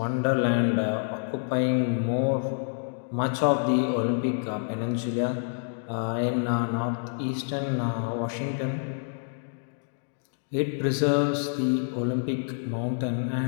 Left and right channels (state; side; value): silent; right; digital silence